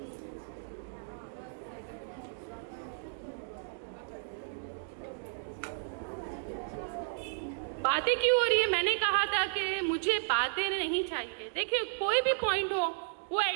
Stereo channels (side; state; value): left; silent; digital silence